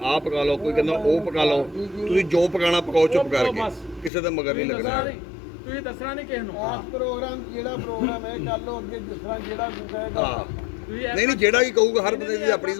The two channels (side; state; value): right; drops out; at 4.1 s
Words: ਆਹ ਪਕਾ ਲਓ ਕੋਈ ਕਹਿੰਦਾ ਉਹ ਪਕਾ ਲਓ ਤੁਸੀਂ ਜੋ ਪਕਾਣਾ ਪਕਾਓ ਚੁੱਪ ਕਰਕੇ ਕਿਸੇ ਦੇ ਮਗਰ ਨਹੀਂ ਲੱਗਣਾ ਤੁਸੀਂ ਦੱਸਣਾ ਨਹੀਂ ਕਿਸੇ ਨੂੰ ਆਹ ਪ੍ਰੋਗਰਾਮ ਜਿਹੜਾ ਪ੍ਰੋਗਰਾਮ ਹੈ ਕਰ ਲਓ ਅੱਗੇ ਜਿਸ ਤਰ੍ਹਾਂ ਜਿਹੜਾ ਕੋਈ ਕਹੇਗਾ ਹਾਂ ਨਹੀਂ ਨਹੀਂ ਜਿਹੜਾ ਵੀ ਕਹੂਗਾ ਹਰ ਬੰਦੇ ਦੀ ਆਪਣੀ